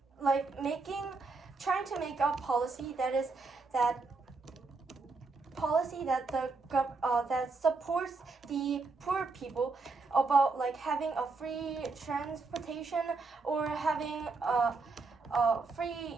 like trying to make a policy that supports the poor people, about like having a free transportation or having free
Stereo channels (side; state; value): left; quieter; 4.0 dB